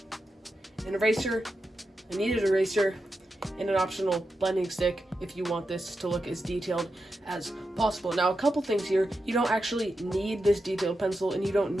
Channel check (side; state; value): both; normal; correlation 0.88